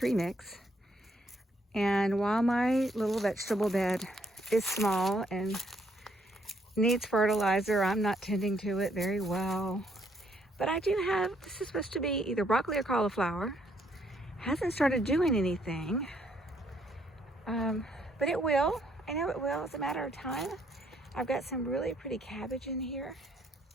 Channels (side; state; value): both; normal; correlation 0.70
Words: mix. And while my little vegetable bed is small and needs fertilizer, I'm not tending to it very well. But I do have, this is supposed to be either broccoli or cauliflower. Hasn't started doing anything, but it will. I know it will. It's a matter of time. I've got some really pretty cabbage in here.